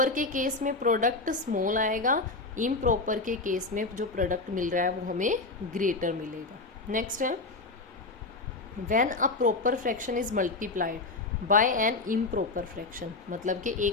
के केस में प्रोडक्ट स्मॉल आएगा, इम्प्रॉपर के केस में जो प्रोडक्ट मिल रहा है वो हमें ग्रेटर मिलेगा। नेक्स्ट है, when a proper fraction is multiplied by an improper fraction, मतलब कि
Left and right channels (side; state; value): right; quieter; 3.4 dB